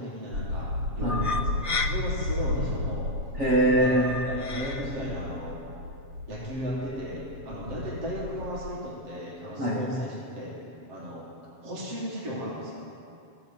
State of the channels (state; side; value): late; left; 7.3 ms